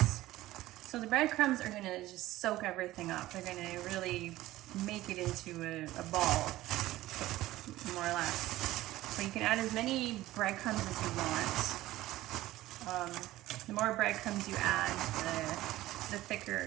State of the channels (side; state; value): left; quieter; 16.3 dB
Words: So the breadcrumbs are going to just soak everything up. They're going to really make it into a ball, more or less. So you can add as many breadcrumbs as you want. The more breadcrumbs you add, the